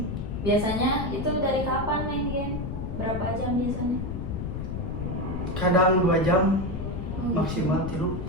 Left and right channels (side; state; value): left; noise; rumble, 5 dB below the sound